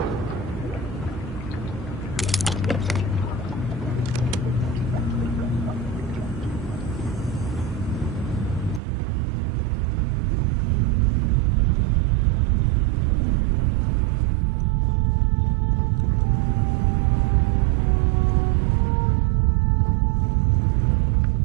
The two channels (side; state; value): left; drops out; at 8.8 s